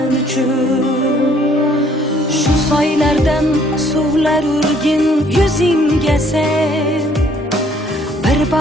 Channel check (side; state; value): both; normal; correlation 0.62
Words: uchun? Shu soylardan suvlar urgin yuzingga sen. Bir